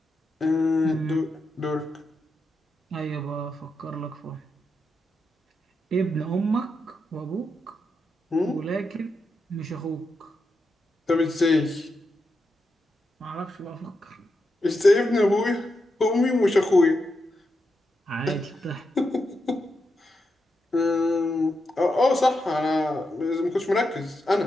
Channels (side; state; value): both; normal; correlation 0.86